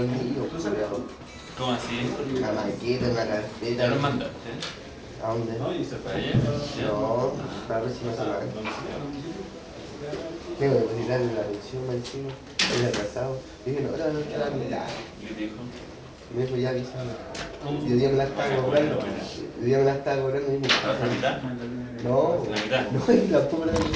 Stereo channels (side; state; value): both; identical; correlation 1.00